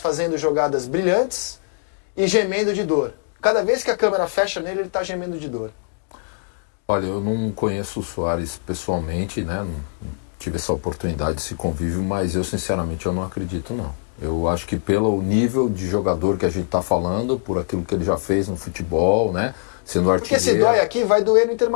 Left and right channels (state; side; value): silent; right; digital silence